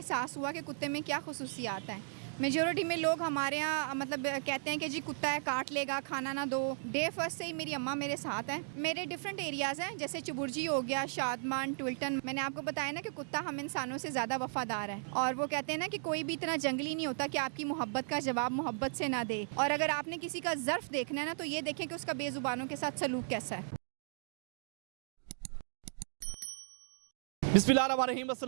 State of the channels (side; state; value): left; silent; digital silence